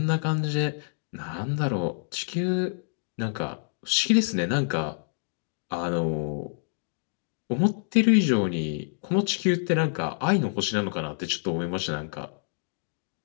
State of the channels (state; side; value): silent; right; digital silence